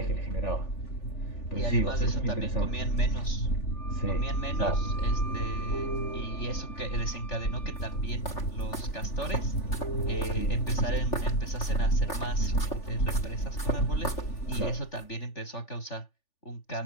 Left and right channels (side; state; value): right; late; 3.4 ms